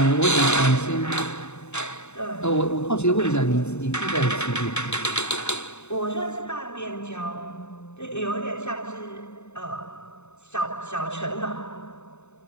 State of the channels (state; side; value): late; right; 0.82 ms